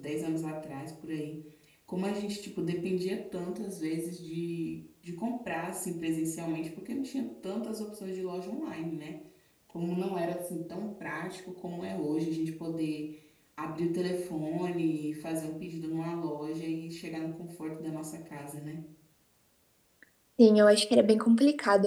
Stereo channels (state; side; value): identical; both; correlation 1.00